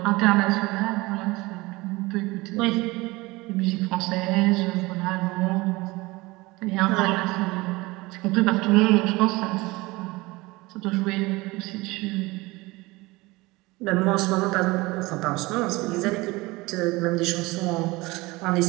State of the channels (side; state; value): left; quieter; 22.0 dB